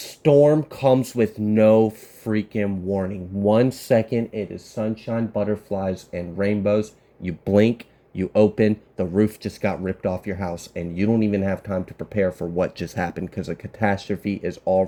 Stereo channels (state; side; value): identical; both; correlation 1.00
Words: comes with no freaking warning. 1 second, it is sunshine, butterflies, and rainbows. You blink, you open, the roof just got ripped off your house, and you don't even have time to prepare for what just happened because a catastrophe is